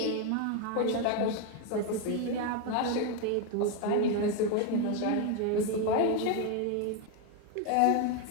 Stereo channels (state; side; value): different; both; correlation 0.02